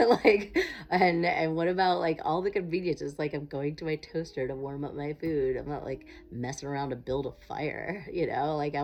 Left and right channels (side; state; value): both; identical; correlation 1.00